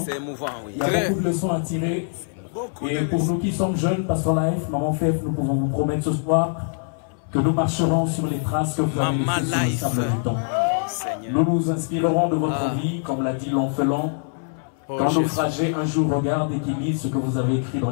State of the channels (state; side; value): silent; right; 63 dB below the other